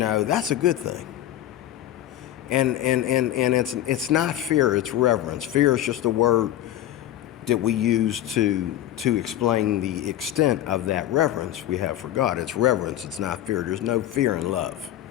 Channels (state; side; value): quieter; right; 12.8 dB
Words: a good thing. And it's not fear, it's reverence. Fear is just a word that we use to explain the extent of that reverence we have for God. It's reverence, it's not fear. There's no fear in love,